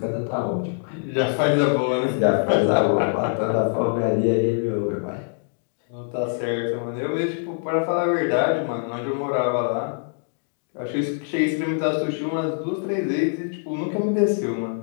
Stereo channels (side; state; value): right; silent; digital silence